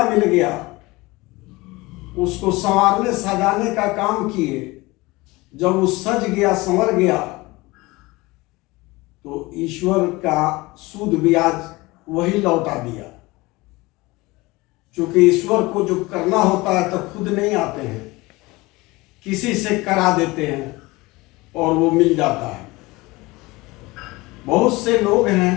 मिल गया, उसको संवारने सजाने का काम किए। जब वो सज गया, संवर गया, तो ईश्वर का सूद ब्याज वही लौटा दिया। क्योंकि ईश्वर को जो करना होता है तो खुद नहीं आते हैं, किसी से करा देते हैं और वो मिल जाता है। बहुत से लोग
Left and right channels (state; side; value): quieter; right; 22.0 dB